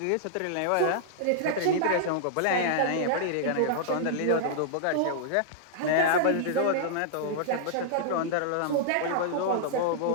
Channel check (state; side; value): different; both; correlation -0.02